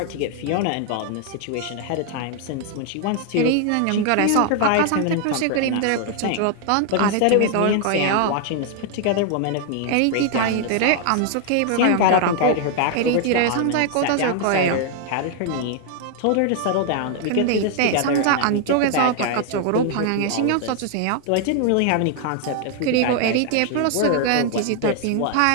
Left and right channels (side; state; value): both; different; correlation 0.00